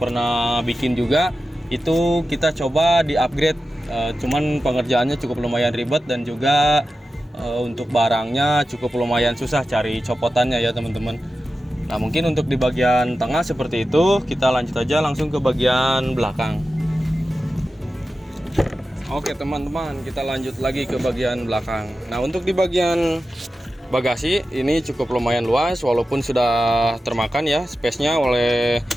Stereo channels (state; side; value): normal; both; correlation 0.93